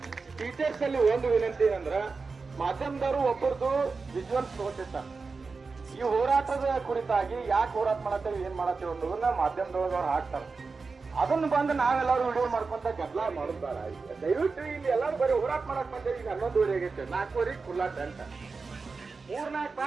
ಟೀಚರ್ಸ್ ಅಲ್ಲಿ ಒಂದು ವಿನಂತಿ ಏನಂದ್ರ, ಮಾಧ್ಯಮದವರು ಒಬ್ಬರದು ವಿಜುವಲ್ಸ್ ತಗೋತಿರ್ತಾರೆ. ಈ ಹೋರಾಟದ ಕುರಿತಾಗಿ ಯಾಕೆ ಹೋರಾಟ ಮಾಡತ್ತೇವೆ, ಏನ್ ಮಾಡತ್ತೇವೆ ಅನ್ನೋದನ್ನ ಮಾಧ್ಯಮದೊಳಗೆ ಅವ್ರು ಹಾಕ್ತಾರೆ. ಅದನ್ನು ಬಂದು ನಾವೆಲ್ಲರೂ ವಿಡಿಯೋ ಮಾಡ್ಕೊಂತ ಗದ್ದಲ ಮಾಡೋದಾರ. ದಯವಿಟ್ಟು ಇಲ್ಲಿ ಎಲ್ಲರೂ ಬರೀ ಹೋರಾಟ ಮಾಡಕ್ ಬಂದೇವಿ. ಈಗ 11 ಆಗೈತೆ, 4 ಖುಲ್ಲಾ ಟೆಂಟ್, 3-4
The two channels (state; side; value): quieter; left; 4.4 dB